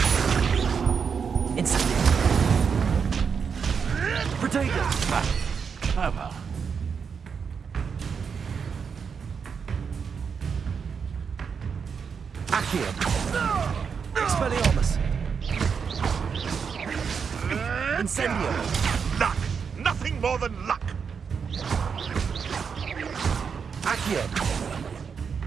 Incendio. Protego. Clever. Accio. Expelliarmus. Incendio. Luck! Nothing more than luck! Accio.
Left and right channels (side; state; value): left; quieter; 6.3 dB